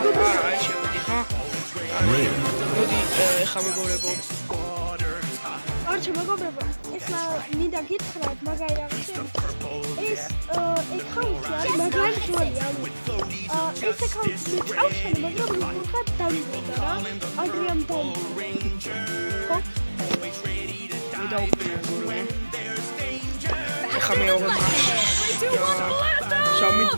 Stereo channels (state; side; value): inverted; both; correlation -1.00